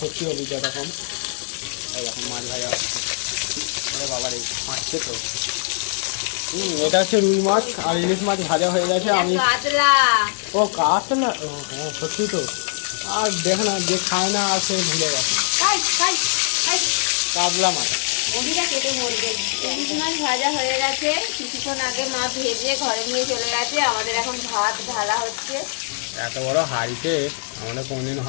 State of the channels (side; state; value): right; silent; 64 dB below the other